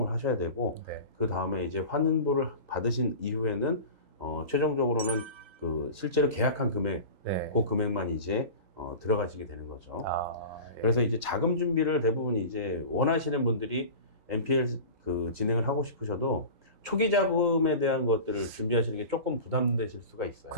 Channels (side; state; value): left; late; 3.8 ms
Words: 하셔야 되고 네. 그 다음에 이제 환불을 받으신 이후에는 최종적으로는 그 실제로 계약한 금액, 네. 그 금액만 이제 들어가시게 되는 거죠. 예. 그래서 이제 자금 준비를 대부분 이제 원하시는 분들이 NPL 그 진행을 하고 싶으셔도 초기 자금에 대한 것들을 준비하시는 게 조금 부담되실 수가 있어요.